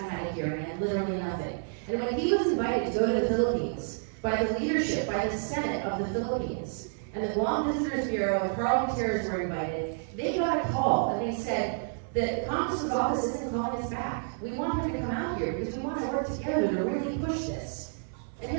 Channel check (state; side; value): silent; left; 57 dB below the other